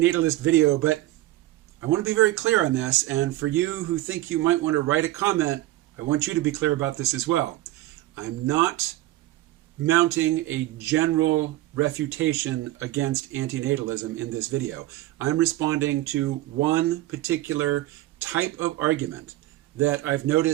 video, but I want to be very clear on this, and for you who think you might want to write a comment, I want you to be clear about this as well. I'm not mounting a general refutation against antinatalism in this video. I'm responding to one particular type of argument that I've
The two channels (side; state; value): left; quieter; 16.3 dB